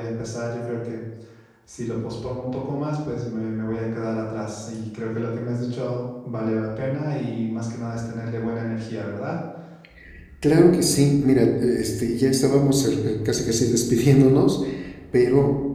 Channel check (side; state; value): both; identical; correlation 1.00